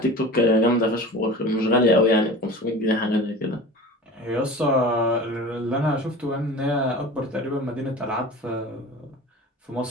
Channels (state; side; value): normal; both; correlation 0.36